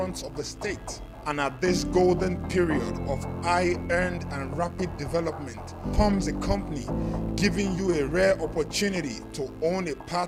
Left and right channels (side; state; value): both; identical; correlation 1.00